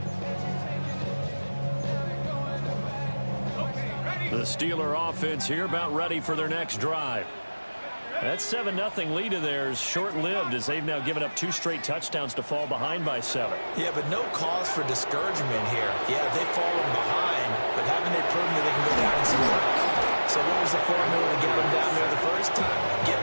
The Steeler offense here about ready for their next drive. That 7-0 lead of theirs short-lived as they've now given up 2 straight touchdowns to fall behind by 7. Yeah, but no cause for discouragement here. Yeah, they've fallen behind, but haven't they proven that they can go down and score? So what was the formula to get them down there the first time? Get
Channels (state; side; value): inverted; both; correlation -1.00